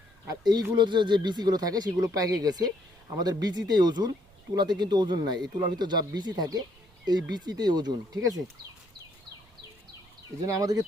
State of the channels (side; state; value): right; noise; rumble, 29 dB below the sound